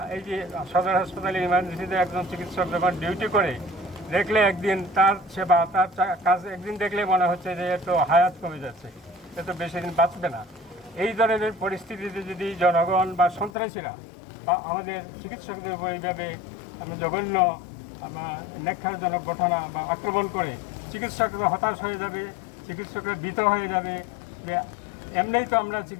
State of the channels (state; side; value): drops out; right; at 13.5 s